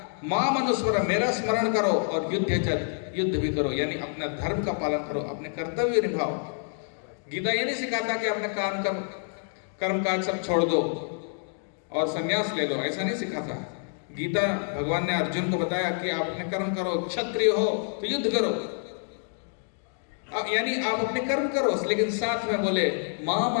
माम अनुस्मर, मेरा स्मरण करो, और युद्ध भी करो, यानी अपना धर्म का पालन करो, अपने कर्तव्य निभाओ। गीता ये नहीं सिखाता कि अपने कर्म काज सब छोड़ दो और संन्यास ले लो, ऐसा नहीं सिखाता। गीता भगवान ने अर्जुन को बताया कि आप अपने कर्म करो, क्षत्रिय हो तो युद्ध करो, यानी आप अपने कर्म करो, लेकिन साथ में बोले माम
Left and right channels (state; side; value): silent; right; 60 dB below the other